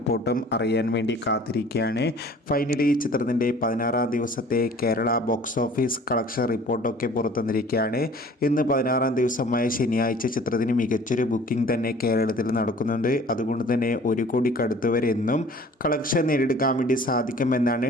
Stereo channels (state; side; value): normal; both; correlation 0.49